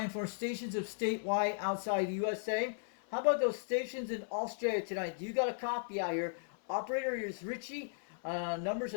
for stations of statewide outside the USA. How about those stations in Australia tonight? Do you got a copy out here? Operator is Richie. Numbers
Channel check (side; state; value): right; silent; 54 dB below the other